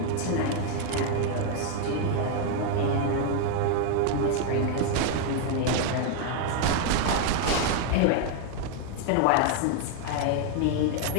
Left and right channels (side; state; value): both; different; correlation 0.00